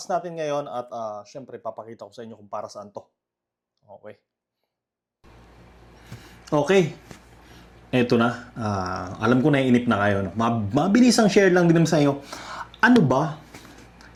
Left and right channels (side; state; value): both; identical; correlation 1.00